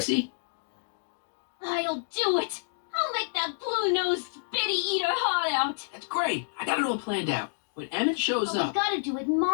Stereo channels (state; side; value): silent; right; digital silence